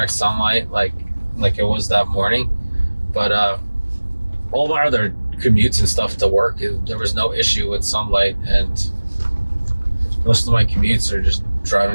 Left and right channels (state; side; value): inverted; both; correlation -1.00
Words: sunlight like it was that morning. But all my other commutes and stuff to work, there was no issue with sunlight, and most of my commutes are just